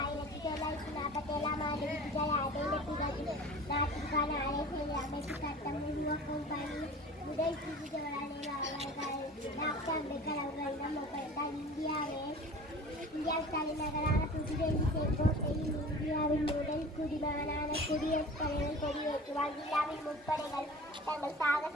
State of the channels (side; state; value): both; normal; correlation 0.40